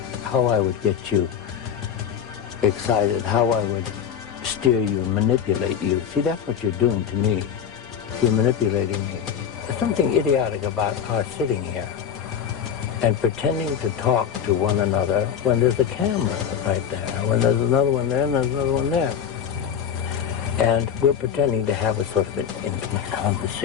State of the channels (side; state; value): right; quieter; 8.3 dB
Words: how I would get you excited, how I would steer you and manipulate you. See, that's what you're doing to me. You're manipulating me. There's something idiotic about our sitting here and pretending to talk to one another when there's a camera right there, when there's another one there and there's another one there. And we're pretending to have a sort of an intimate